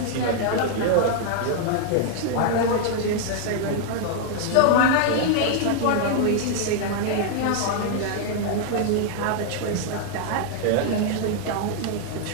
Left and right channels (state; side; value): different; both; correlation 0.00